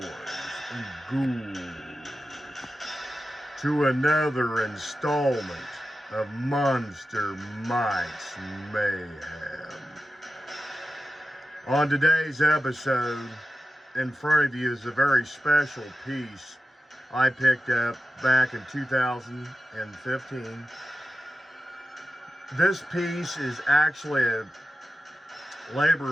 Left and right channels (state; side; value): normal; both; correlation 0.92